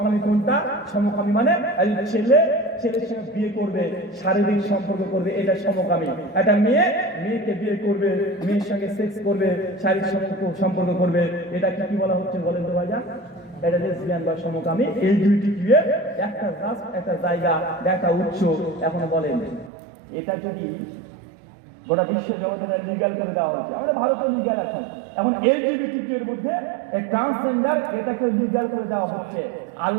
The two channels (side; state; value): left; drops out; at 19.7 s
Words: কোনটা। সমকামী মানে ছেলের সঙ্গে বিয়ে করবে, শারীরিক সম্পর্ক করবে, এটা সমকামী। একটা মেয়েকে বিয়ে করবে, মেয়ের সঙ্গে সেক্স করবে, শারীরিক সম্পর্ক করবে, এটা কি বলা হচ্ছে বলেন তো ভাইয়া? এটা লেসবিয়ান বা সমকামী। এই দুইটি কি একটা রাস্ট, একটা জায়গা, একটা উৎস। এখন বলেন এটা যদি গোটা বিশ্ব জগতে লিগাল করে দেওয়া হচ্ছে, আমাদের ভারতে লিগাল আছে, এখন এলজিবিটি এর মধ্যে ট্রান্সজেন্ডার এটাকে লিগাল করে দেওয়া হচ্ছে।